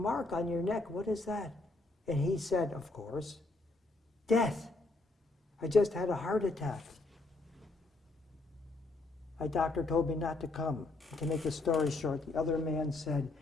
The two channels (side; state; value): right; quieter; 3.1 dB